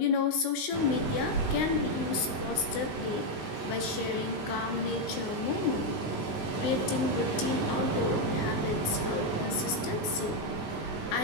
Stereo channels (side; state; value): right; late; 19 ms